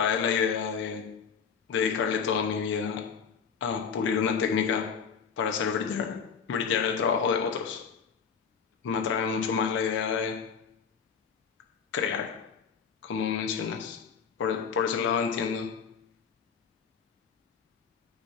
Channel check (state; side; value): quieter; right; 6.5 dB